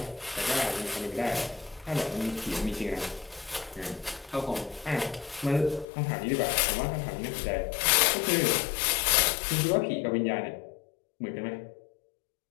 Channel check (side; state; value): right; drops out; at 5.9 s